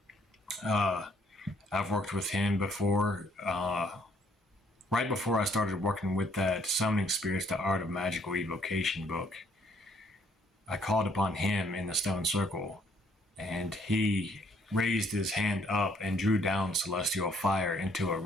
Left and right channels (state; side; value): normal; both; correlation 0.66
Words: I've worked with him before. Right before I started working with that Summoning Spirits, the Art of Magical Evocation book, I called upon him in the stone circle, and he raised his hand up and drew down celestial fire into a